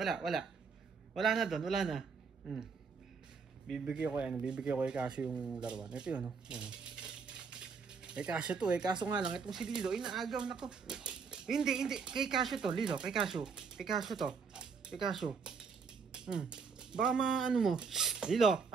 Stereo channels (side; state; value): left; quieter; 5.5 dB